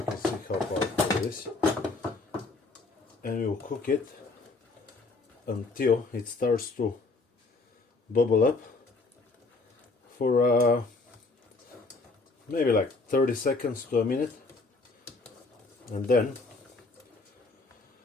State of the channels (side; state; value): right; quieter; 3.6 dB